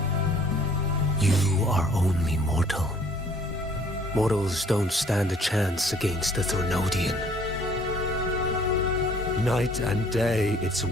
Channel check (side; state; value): both; normal; correlation 0.58